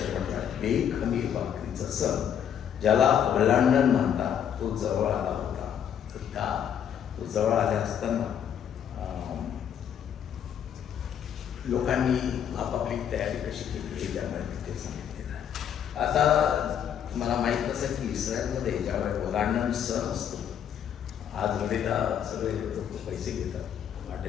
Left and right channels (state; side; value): quieter; right; 9.0 dB